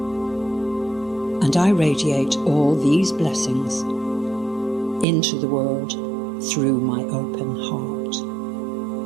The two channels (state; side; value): drops out; left; at 5.1 s